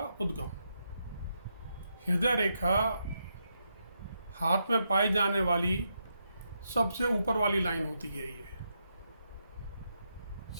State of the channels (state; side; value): inverted; both; correlation -0.82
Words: उद्गम। हृदय रेखा हाथ में पाई जाने वाली सबसे ऊपर वाली लाइन होती है। ये